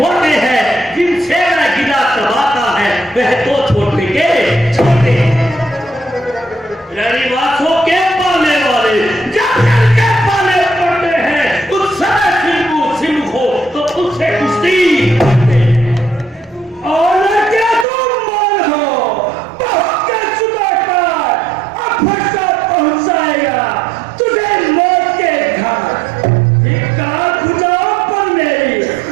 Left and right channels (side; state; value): left; drops out; at 17.9 s